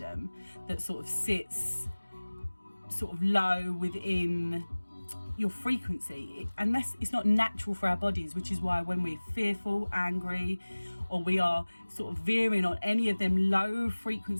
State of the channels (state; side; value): inverted; both; correlation -1.00